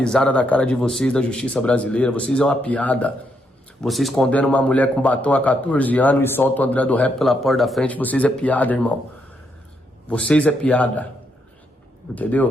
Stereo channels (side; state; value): both; normal; correlation 0.77